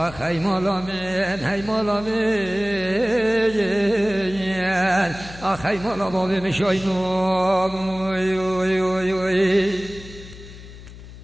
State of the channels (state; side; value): noise; left; hum, 16 dB below the sound